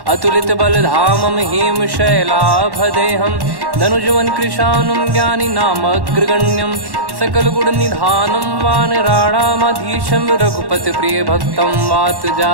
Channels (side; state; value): left; late; 1.1 ms